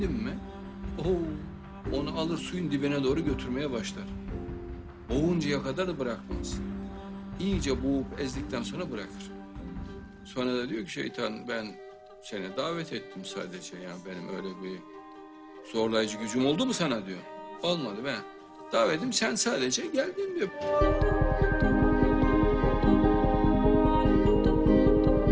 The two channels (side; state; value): both; identical; correlation 1.00